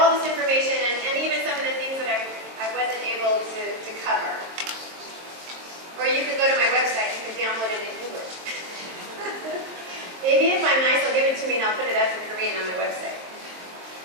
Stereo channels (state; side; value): late; left; 23 ms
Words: this information and even some of the things that I wasn't able to cover. Or you can go to my website, you can download it in English. Maybe if I'm nice, they'll give it to me and I'll put it up in Korean on my website.